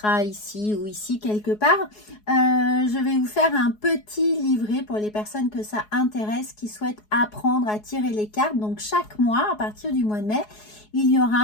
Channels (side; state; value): right; late; 4.7 ms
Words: ici ou ici quelque part. Je vais vous faire un petit livret pour les personnes que ça intéresse, qui souhaitent apprendre à tirer les cartes. Donc chaque mois, à partir du mois de mai, il y